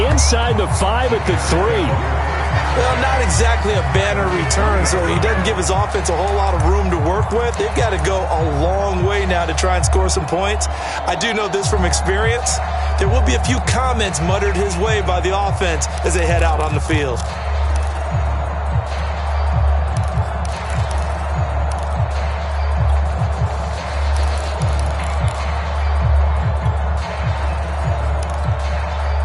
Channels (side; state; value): both; identical; correlation 1.00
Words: the 5 at the 3. Well, not exactly a banner return, so he doesn't give his offense a whole lot of room to work with. They've got to go a long way now to try and score some points. I do know this from experience. There will be a few comments muttered his way by the offense as they head out on the field.